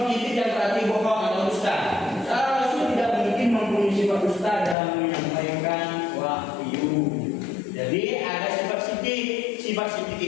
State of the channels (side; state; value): right; drops out; at 4.8 s